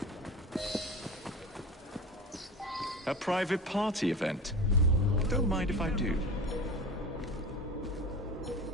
A private party event. Don't mind if I do.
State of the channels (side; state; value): both; normal; correlation 0.32